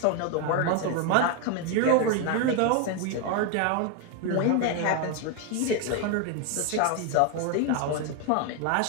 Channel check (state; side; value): different; both; correlation 0.01